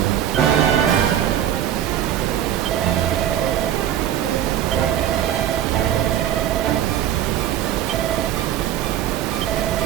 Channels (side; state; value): left; quieter; 11.1 dB